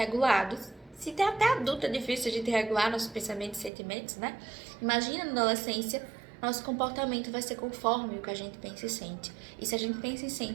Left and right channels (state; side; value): drops out; left; at 3.7 s